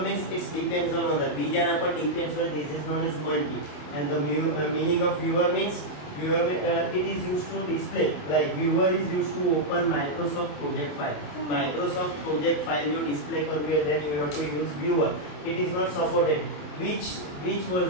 means it depends on other, બીજાના પર depends on, this is known as multi. And the meaning of viewer means viewer, it is used to display, like viewer is used to open Microsoft project file. Microsoft project file you display convey, then you have to use viewer. It is not supported. Which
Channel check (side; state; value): right; late; 27 ms